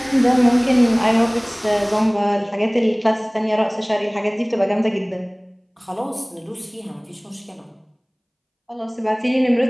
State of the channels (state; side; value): identical; both; correlation 1.00